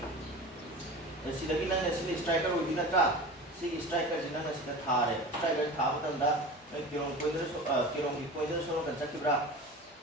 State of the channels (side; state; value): both; normal; correlation 0.34